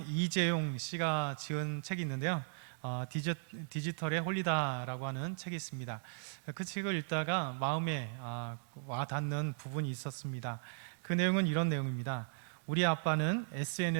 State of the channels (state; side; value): silent; left; digital silence